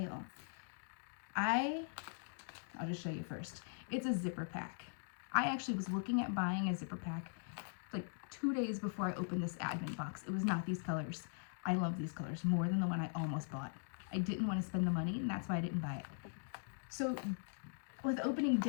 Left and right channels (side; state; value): right; silent; digital silence